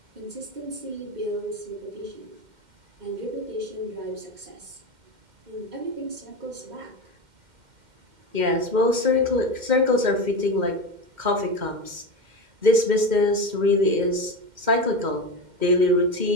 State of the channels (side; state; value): left; late; 2.1 ms